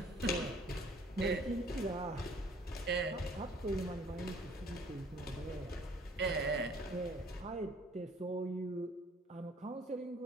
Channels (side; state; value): both; normal; correlation 0.56